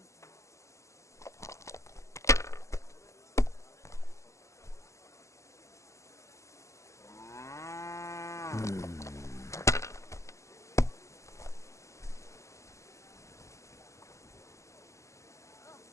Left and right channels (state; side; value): late; right; 0.15 ms